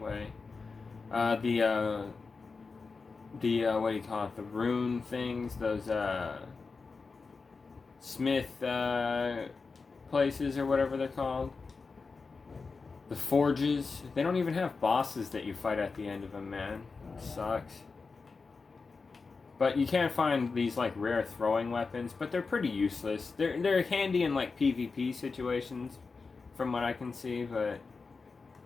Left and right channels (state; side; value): quieter; right; 4.5 dB